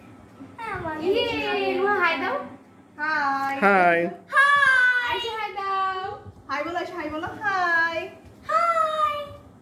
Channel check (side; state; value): both; identical; correlation 1.00